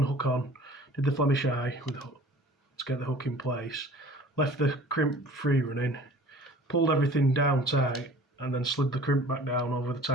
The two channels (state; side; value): normal; both; correlation 0.47